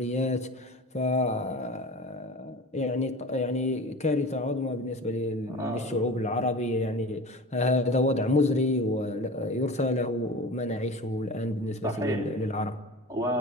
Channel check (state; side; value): normal; both; correlation 0.35